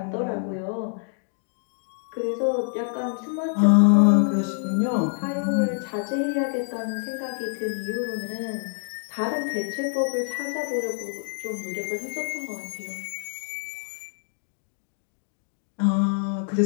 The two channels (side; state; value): right; silent; 61 dB below the other